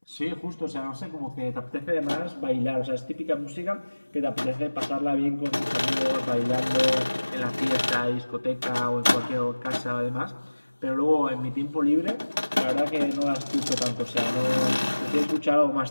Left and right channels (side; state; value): both; inverted; correlation -1.00